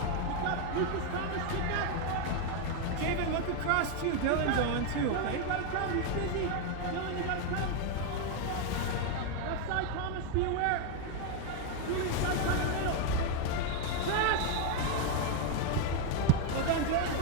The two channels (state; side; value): different; both; correlation 0.01